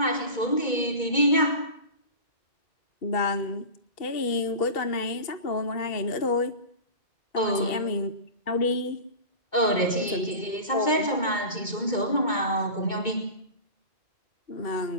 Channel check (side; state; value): right; late; 2.2 ms